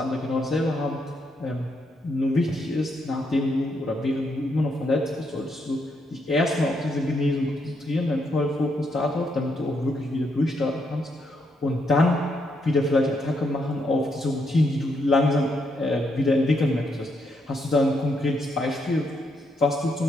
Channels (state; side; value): normal; both; correlation 0.77